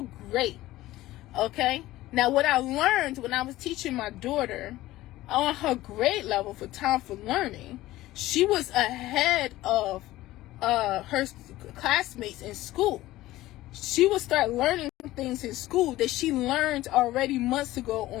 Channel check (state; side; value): quieter; right; 16.5 dB